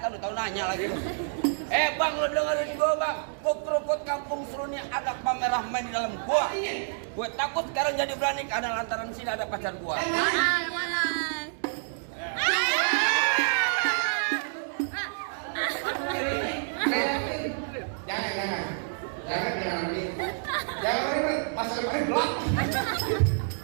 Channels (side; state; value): left; silent; digital silence